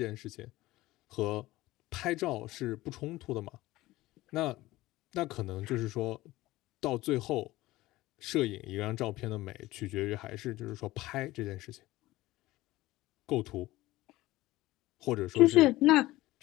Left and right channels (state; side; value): quieter; right; 17.9 dB